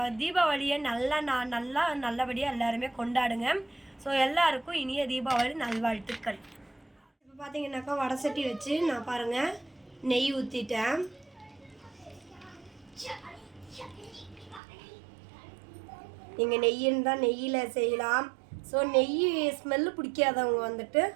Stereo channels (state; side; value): drops out; left; at 14.6 s